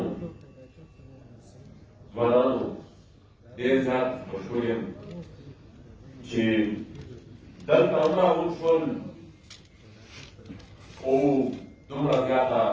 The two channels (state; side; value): identical; both; correlation 1.00